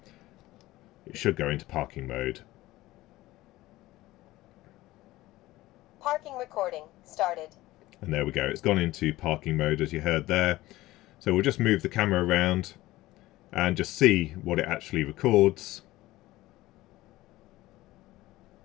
it should go into parking mode. Parking recording started. And there we go, it's gone into parking mode as you heard there. So we'll just move the camera around and just see what it actually records.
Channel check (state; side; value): quieter; right; 17.6 dB